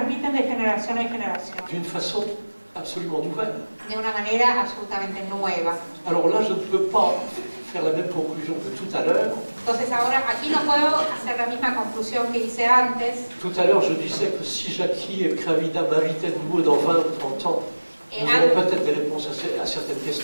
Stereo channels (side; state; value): both; inverted; correlation -1.00